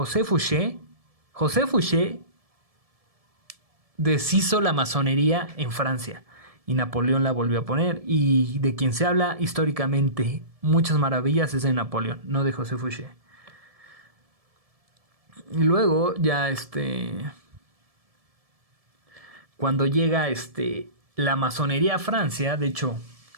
Fouché deshizo la masonería en Francia y Napoleón la volvió a poner, y de quien se habla históricamente muchas maravillas es de Napoleón, no de José Fouché. Y luego ya cuando llega la masonería a Francia, de hecho,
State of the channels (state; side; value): late; left; 1.7 ms